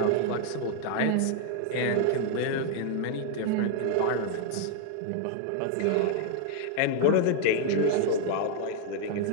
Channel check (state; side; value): different; both; correlation 0.00